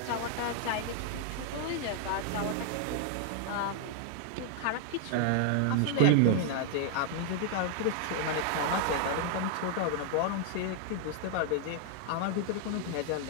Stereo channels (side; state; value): both; different; correlation 0.00